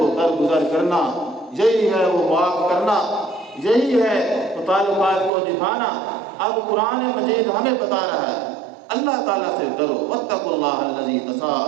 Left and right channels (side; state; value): left; drops out; at 5.3 s